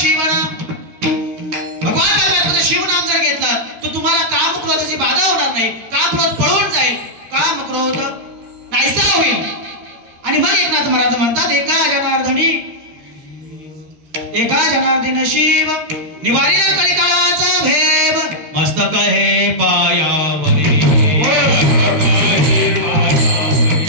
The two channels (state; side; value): late; left; 13 ms